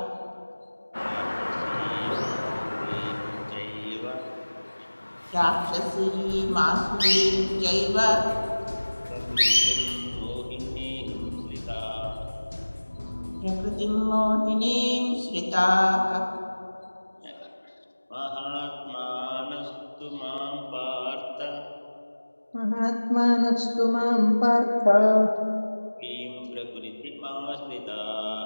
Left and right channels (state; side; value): inverted; both; correlation -1.00